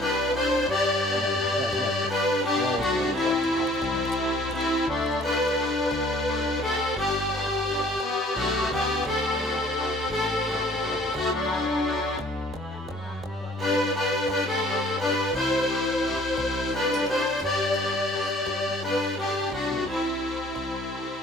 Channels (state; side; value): normal; both; correlation 0.55